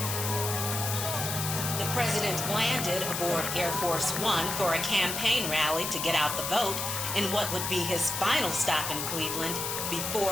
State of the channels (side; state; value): left; noise; hiss, 3 dB below the sound